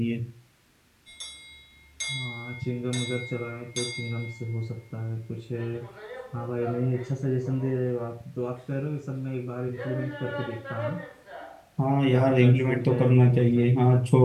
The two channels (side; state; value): both; identical; correlation 1.00